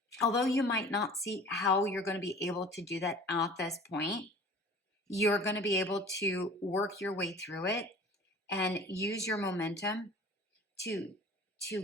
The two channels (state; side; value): normal; both; correlation 0.44